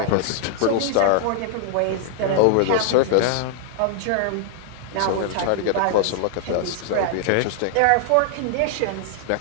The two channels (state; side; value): different; both; correlation -0.01